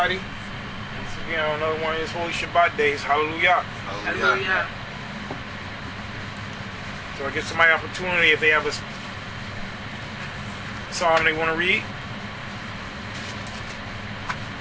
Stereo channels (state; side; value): identical; both; correlation 1.00